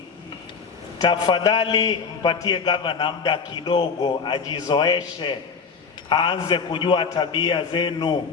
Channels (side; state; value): right; quieter; 5.6 dB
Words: tafadhali mpatie governor muda kidogo ajizoeshe, aanze kujua tabia zenu,